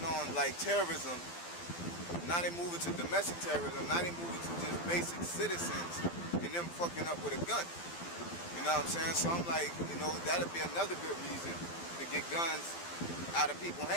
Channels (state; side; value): late; right; 12 ms